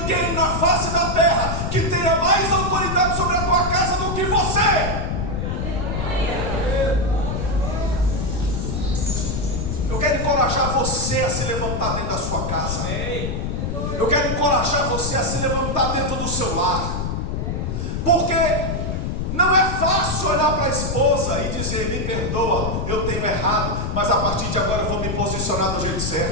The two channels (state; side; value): noise; left; rumble, 2 dB below the sound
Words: na face da terra que tenha mais autoridade sobre a tua casa do que você. Eu quero encorajar você a se levantar dentro da sua casa. Eu quero encorajar você a se levantar dentro do seu lar. Porque não é fácil olhar para a esposa e dizer: me perdoa, eu tenho errado, mas a partir de agora eu vou me posicionar do jeito